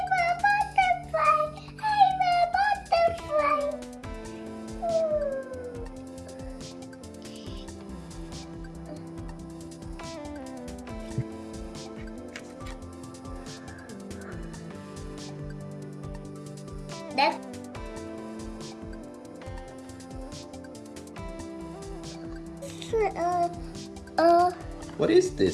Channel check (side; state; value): both; identical; correlation 1.00